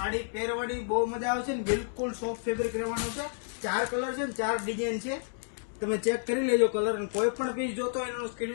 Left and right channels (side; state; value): right; silent; digital silence